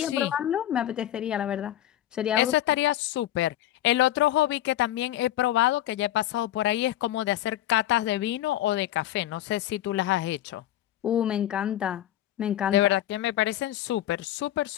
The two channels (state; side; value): quieter; right; 13.1 dB